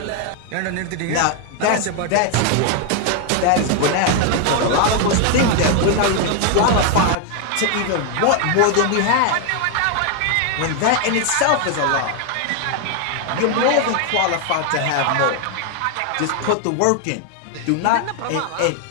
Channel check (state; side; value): different; both; correlation 0.01